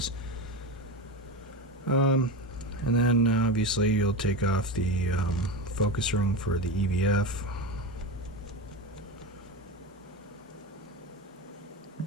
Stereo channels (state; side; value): normal; both; correlation 0.21